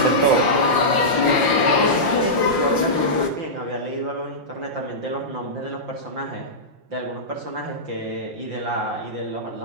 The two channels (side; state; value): left; late; 5.7 ms